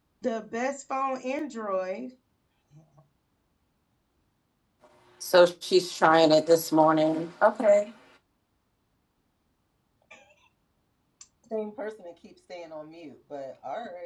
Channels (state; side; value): identical; both; correlation 1.00